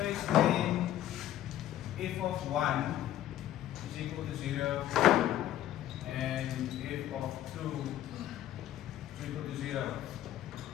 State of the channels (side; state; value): right; quieter; 12.6 dB